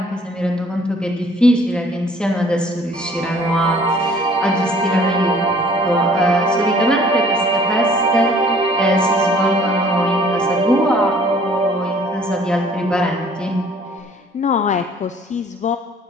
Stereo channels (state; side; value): normal; both; correlation 0.55